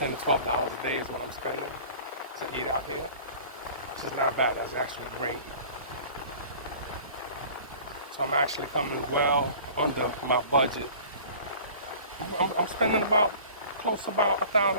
to $12 a day is what I'm spending to eat out here, which is not bad. That's actually great. So I'm actually coming well under my budget. I'm spending about close to about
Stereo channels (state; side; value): inverted; both; correlation -0.44